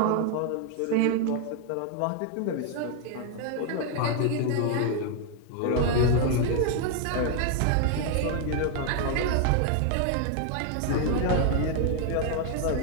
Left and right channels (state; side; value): different; both; correlation 0.00